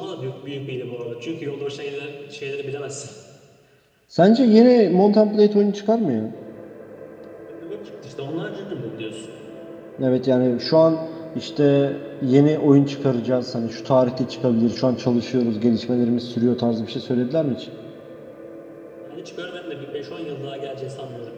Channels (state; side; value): identical; both; correlation 1.00